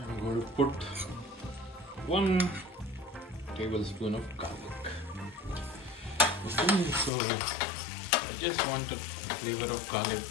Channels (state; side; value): drops out; right; at 7.1 s